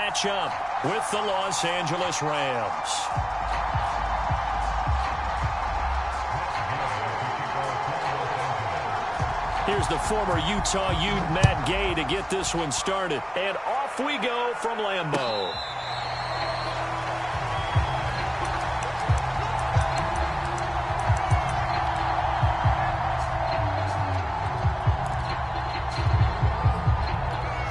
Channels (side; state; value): both; identical; correlation 1.00